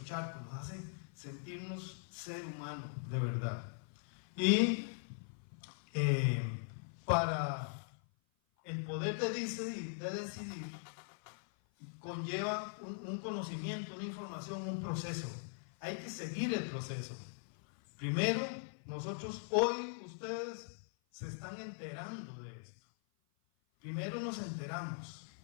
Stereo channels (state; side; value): silent; right; 51 dB below the other